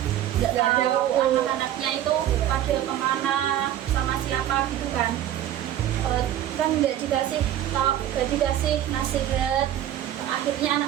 nggak tahu anak-anaknya itu pada kemana sama siapa gitu kan. Kan nggak dikasih nasihat, akhirnya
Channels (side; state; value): left; quieter; 11.9 dB